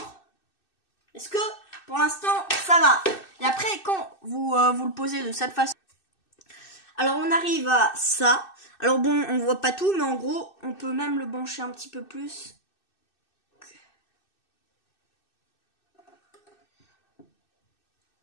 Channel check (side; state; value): right; late; 2.6 ms